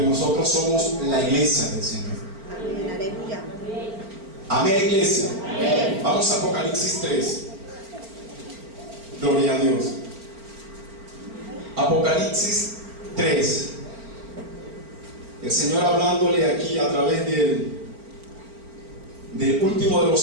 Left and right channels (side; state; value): left; late; 4.4 ms